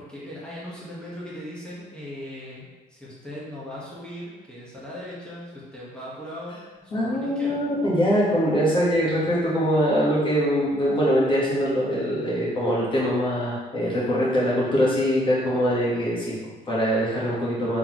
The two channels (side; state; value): both; normal; correlation 0.66